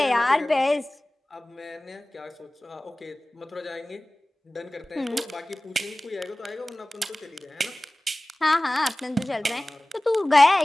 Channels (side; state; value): both; normal; correlation 0.98